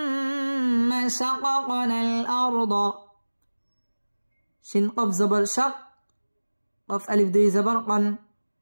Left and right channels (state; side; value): inverted; both; correlation -1.00